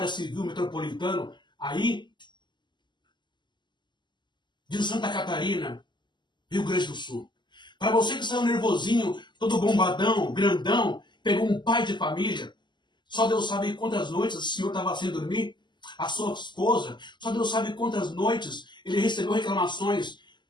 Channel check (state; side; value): late; right; 0.22 ms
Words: civil metropolitano, aí, de Santa Catarina, Rio Grande do Sul. Para você que saiu nervosinho, todo bombadão, grandão, pegou um pai de família, só Deus sabe quantas noites o senhor estava sem dormir, a sua esposa, só Deus sabe quantas noites ele recebeu reclamações